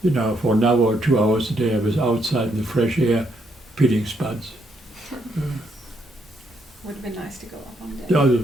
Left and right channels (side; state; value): both; normal; correlation 0.75